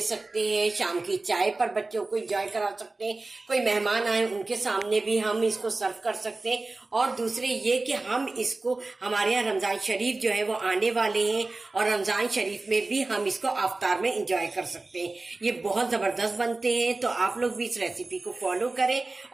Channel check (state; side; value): quieter; left; 3.3 dB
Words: सकते हैं, शाम की चाय पर बच्चों को एंजॉय करा सकते हैं, कोई मेहमान आए उनके सामने भी हम इसको सर्व कर सकते हैं। और दूसरे ये कि हम इसको, हमारे यहाँ रमजान शरीफ जो है वो आने वाले हैं और रमजान शरीफ में भी हम इसको अफ्तार में एंजॉय कर सकते हैं। ये बहुत ज़बरदस्त बनते हैं। तो आप लोग भी इस रेसिपी को फॉलो करें